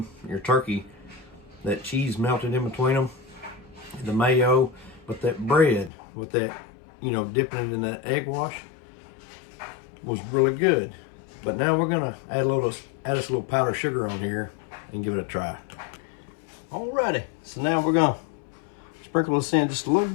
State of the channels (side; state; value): right; drops out; at 5.9 s